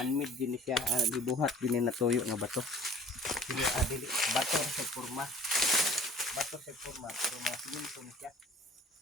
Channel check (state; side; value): normal; both; correlation 0.49